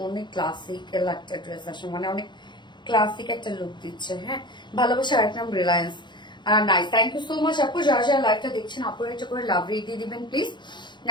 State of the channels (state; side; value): late; right; 0.22 ms